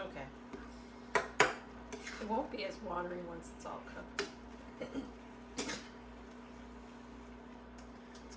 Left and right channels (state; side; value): identical; both; correlation 1.00